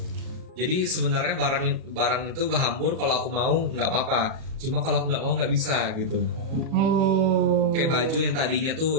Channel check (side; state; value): left; late; 37 ms